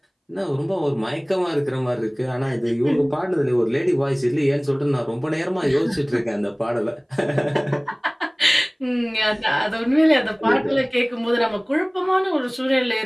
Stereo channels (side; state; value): both; identical; correlation 1.00